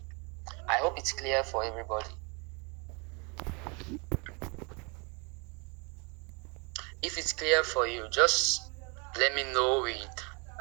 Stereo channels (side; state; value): left; quieter; 31.2 dB